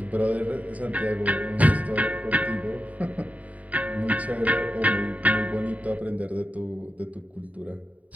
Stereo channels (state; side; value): late; left; 0.070 ms